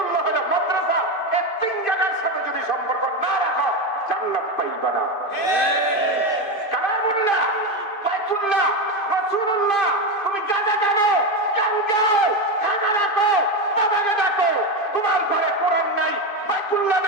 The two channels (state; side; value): late; right; 2.5 ms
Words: হলো মাদ্রাসা এই তিন জায়গার সাথে যদি সম্পর্ক না রাখো জান্নাত পাইবা না কালামুল্লাহ বাইতুল্লাহ রাসূলুল্লাহ তুমি গাজা জানো গান গাও গাজা রাখো বাবাকে ডাকো তোমার ঘরে কোরআন নাই বাইতুল্লাহ